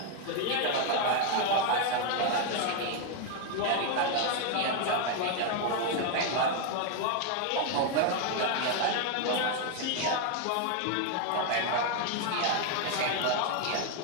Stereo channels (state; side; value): different; both; correlation 0.01